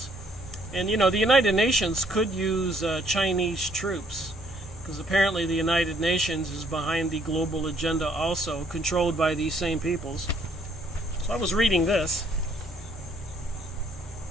And you know, the United Nations could use Chinese troops, because apparently the United Nations is behind the global agenda also, controlled by these same peoples. So I was reading this.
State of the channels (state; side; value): normal; both; correlation 0.66